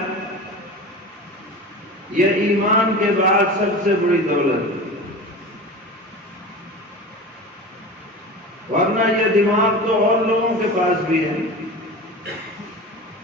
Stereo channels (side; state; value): both; normal; correlation 0.32